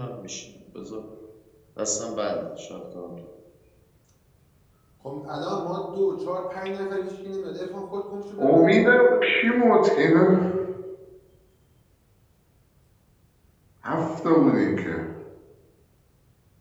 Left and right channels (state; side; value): identical; both; correlation 1.00